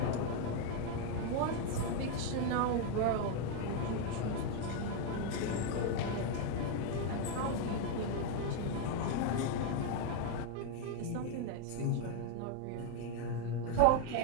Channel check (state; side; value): different; both; correlation 0.00